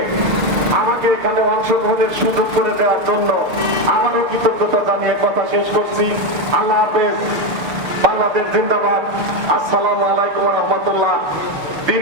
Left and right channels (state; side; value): late; left; 6.6 ms